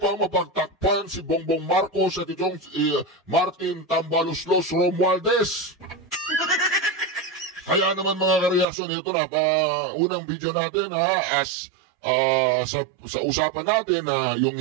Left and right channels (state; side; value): drops out; left; at 8.7 s